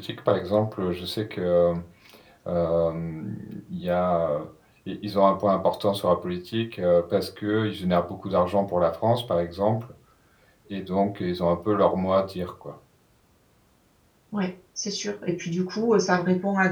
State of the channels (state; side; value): identical; both; correlation 1.00